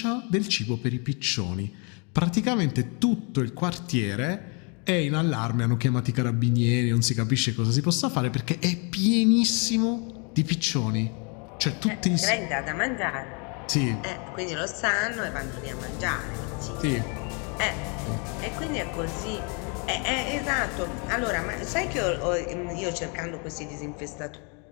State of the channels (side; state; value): right; quieter; 34.9 dB